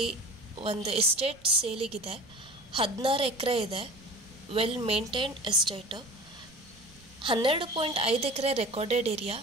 ಒಂದು ಎಸ್ಟೇಟ್ ಸೇಲಿಗಿದೆ. 16 ಎಕರೆ ಇದೆ. Well maintained estate. 12.5 acre recorded area.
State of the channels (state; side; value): noise; right; rumble, 26 dB below the sound